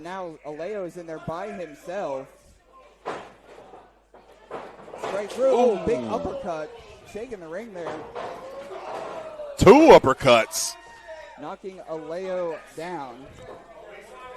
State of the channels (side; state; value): both; identical; correlation 1.00